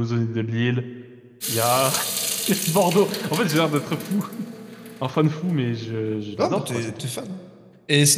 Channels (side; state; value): both; identical; correlation 1.00